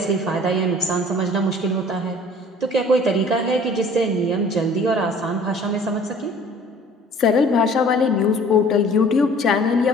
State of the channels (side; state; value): both; normal; correlation 0.50